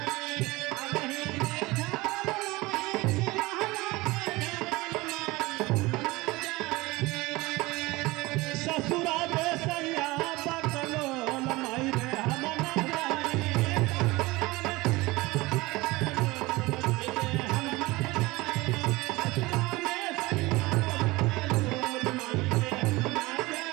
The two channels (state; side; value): quieter; left; 21.3 dB